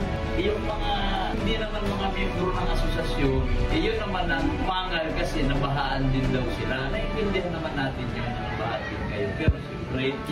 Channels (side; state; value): both; identical; correlation 1.00